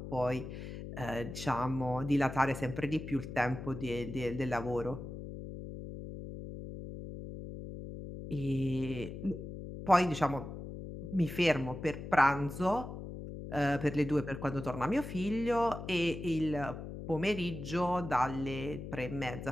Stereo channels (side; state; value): left; noise; hum, 9 dB below the sound